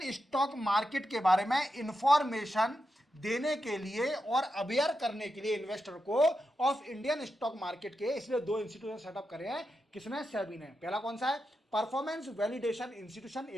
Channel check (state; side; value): normal; both; correlation 0.88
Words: stock market के बारे में इंफॉर्मेशन देने के लिए और अवेयर करने के लिए इन्वेस्टर को ऑफ इंडियन स्टॉक मार्केट के, इसलिए 2 इंस्टीट्यूशन सेटअप करे हैं। किसने? सेबी ने। पहला कौन सा है? Performance validation institution